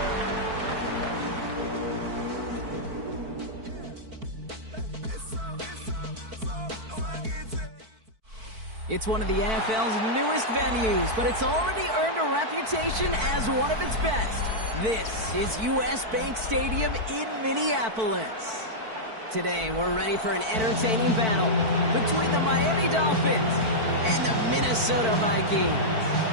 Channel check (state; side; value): late; left; 4.5 ms